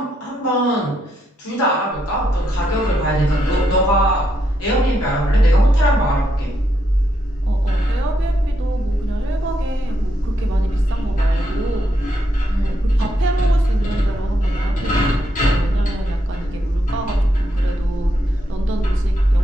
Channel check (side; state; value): both; normal; correlation 0.79